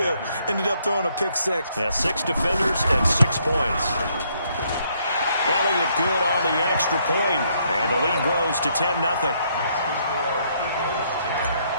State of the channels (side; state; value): both; inverted; correlation -0.70